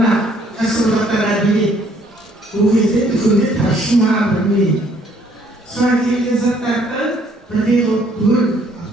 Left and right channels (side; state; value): both; normal; correlation 0.63